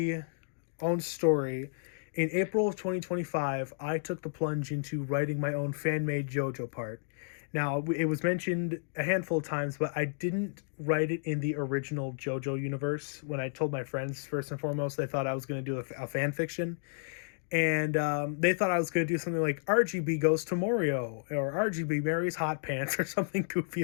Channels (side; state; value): right; silent; digital silence